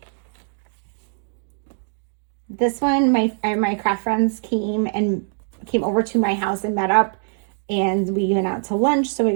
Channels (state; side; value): silent; left; digital silence